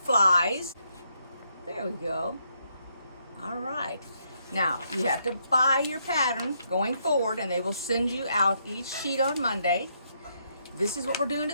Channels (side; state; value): both; inverted; correlation -0.76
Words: There we go. All right. Now, you have to buy your pattern going forward, and they will send you out each sheet on Monday. This is what we're doing